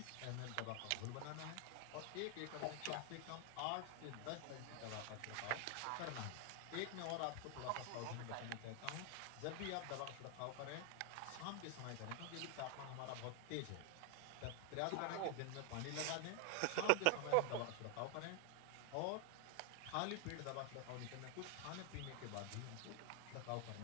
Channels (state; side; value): different; both; correlation 0.00